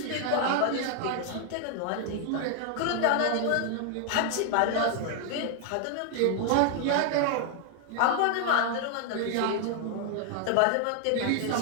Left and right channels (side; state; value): both; different; correlation 0.00